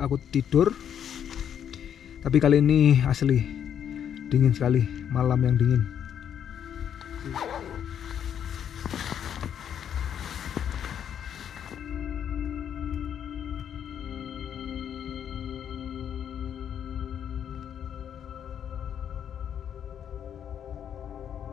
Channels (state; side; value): quieter; right; 9.0 dB